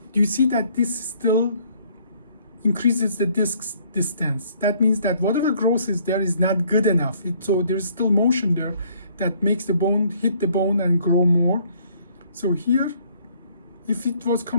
do you see that this still increases the disc distance? That means that whatever growth is there is not good enough. So there's still motion there that makes the bone hit the bone and grow more. So here, if it was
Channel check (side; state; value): both; inverted; correlation -0.62